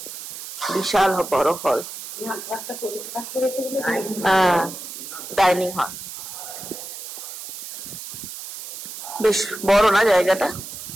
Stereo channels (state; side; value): noise; right; hiss, 10 dB below the sound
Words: বিশাল বড় হল, হ্যাঁ, ডাইনিং হল। বেশ বড় না জায়গাটা?